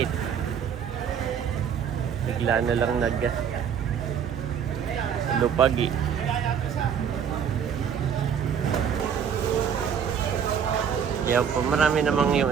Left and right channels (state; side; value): quieter; left; 7.8 dB